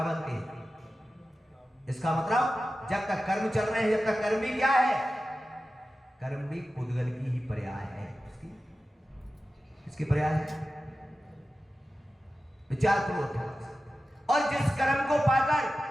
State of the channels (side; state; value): both; normal; correlation 0.94